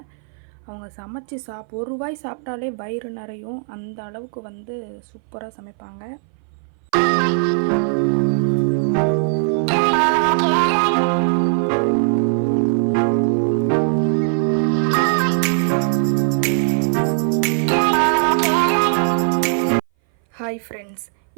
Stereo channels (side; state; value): left; silent; 60 dB below the other